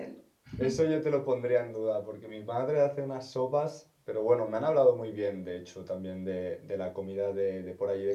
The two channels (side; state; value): both; identical; correlation 1.00